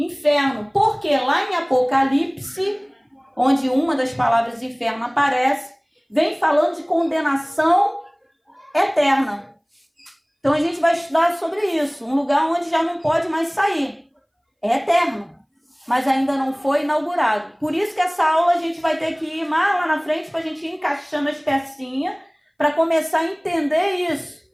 porque lá em Apocalipse, onde uma das palavras inferno aparece, vem falando de condenação eterna. Então a gente vai estudar sobre isso, um lugar onde já não pode mais sair. É eterno, mas ainda não foi inaugurado. Por isso que essa aula a gente vai ter que ir mais lá na frente para a gente ir encaixando as pecinhas para começar a entender isso.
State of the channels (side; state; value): both; identical; correlation 1.00